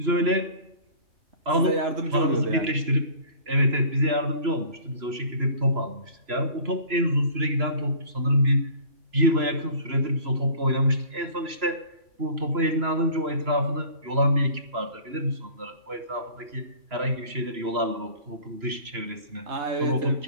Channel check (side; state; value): left; late; 3.0 ms